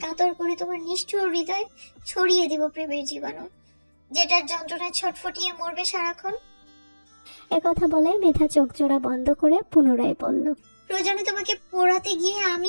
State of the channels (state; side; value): inverted; both; correlation -1.00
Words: কাতর করে তোমার নিষ্ঠুর হৃদয় ছড়িয়ে দিব প্রেমের জীবাণু, যেটার যন্ত্রণায় ছটফটিয়ে মরবে সারাক্ষণ। একথা বলে মেধা চোখ জোড়া বন্ধ করে পুনরায় বলল, প্রয়োজনে তোমাকে পোড়াতে গিয়ে